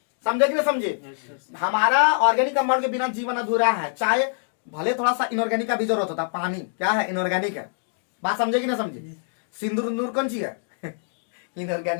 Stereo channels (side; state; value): right; silent; digital silence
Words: समझे कि नहीं समझे? हमारा ऑर्गेनिक कंपाउंड के बिना जीवन अधूरा है। चाहे भले थोड़ा सा इनऑर्गेनिक का भी जरूरत होता, पानी क्या है, इनऑर्गेनिक है। बात समझे कि नहीं समझे? सिंदूर उंदूर कौन सी है